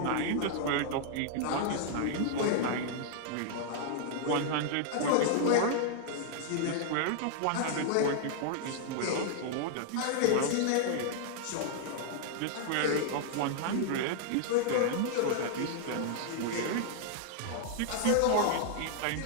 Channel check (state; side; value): different; both; correlation -0.01